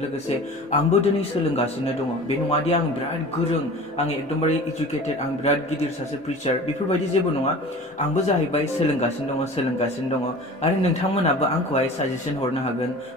लोगोसे आंबो दिनै सोलोंगासिनो दङ। बे नङादि आं बिराद गोरों, आं एकदमबारे इडुकेटेड, आं बिराद गिदिर सासे प्रिचार, बेफोरबायदि जेबो नङा। आंबो जाहैबाय सोलोंगासिनो दङ आरो नोंथांमोनाबो आंखौहाय साजेसन हरनो हागोन,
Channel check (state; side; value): normal; both; correlation 0.39